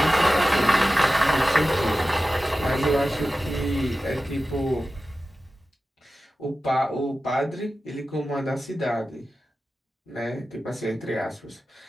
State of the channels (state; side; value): normal; both; correlation 0.94